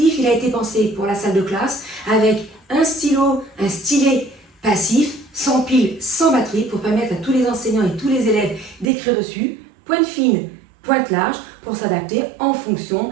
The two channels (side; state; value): left; drops out; at 8.9 s